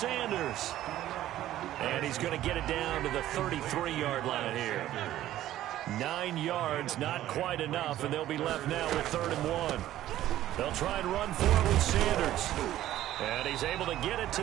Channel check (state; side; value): quieter; left; 13.5 dB